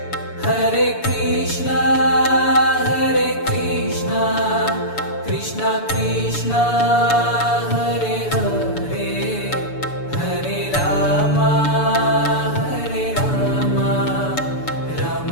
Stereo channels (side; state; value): right; late; 6.9 ms